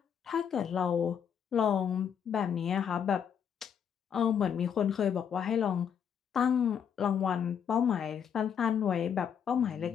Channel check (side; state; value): right; quieter; 8.0 dB